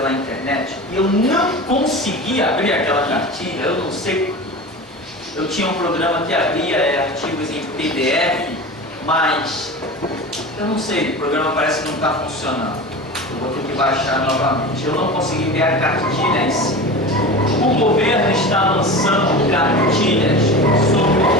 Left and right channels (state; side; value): normal; both; correlation 0.31